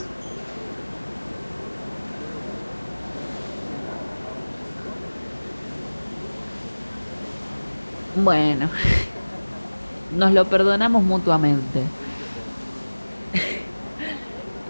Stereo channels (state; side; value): inverted; both; correlation -1.00